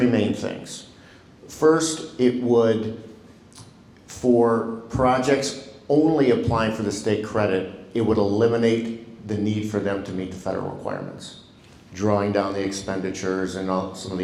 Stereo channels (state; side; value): identical; both; correlation 1.00